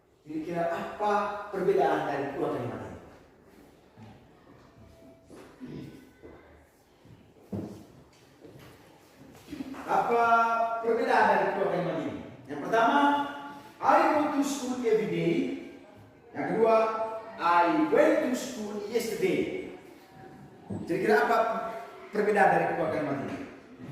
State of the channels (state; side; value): identical; both; correlation 1.00